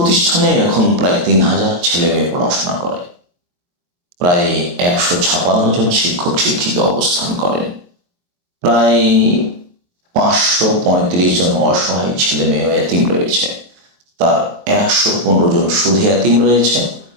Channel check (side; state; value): left; late; 23 ms